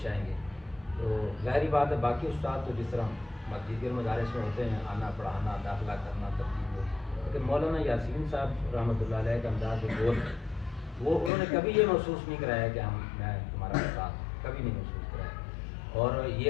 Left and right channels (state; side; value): drops out; right; at 11.3 s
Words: آئیں گے۔ تو ظاہری بات ہے باقی استاد تو جس طرح دیگر مدارس میں ہوتے ہیں، آنا پڑھانا داخلہ کرنا ترتیب، لیکن مولانا یاسین صاحب رحمۃ اللہ علیہ کا انداز جو وہ انہوں نے کبھی یہ محسوس نہیں کرایا کہ میں تمہارا استاد ہوں، کبھی نہیں محسوس کرایا۔ اور